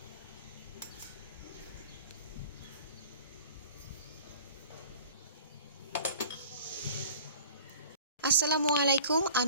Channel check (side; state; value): both; inverted; correlation -0.45